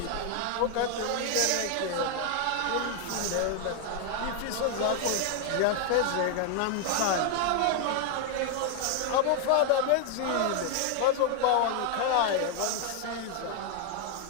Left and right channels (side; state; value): both; different; correlation 0.00